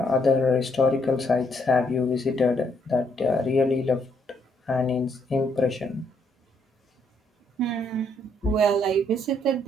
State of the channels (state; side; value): normal; both; correlation 0.72